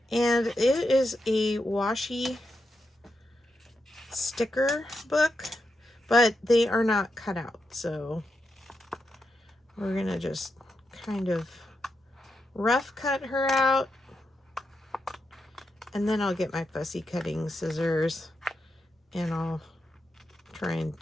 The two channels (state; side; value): normal; both; correlation 0.85